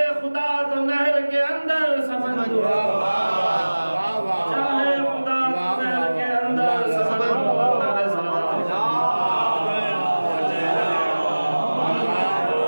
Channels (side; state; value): both; inverted; correlation -1.00